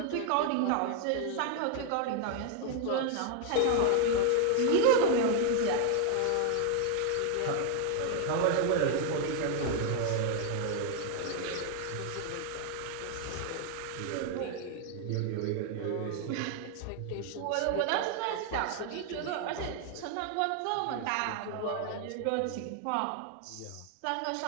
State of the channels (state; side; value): different; both; correlation 0.00